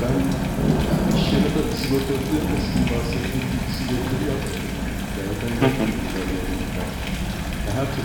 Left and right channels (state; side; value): identical; both; correlation 1.00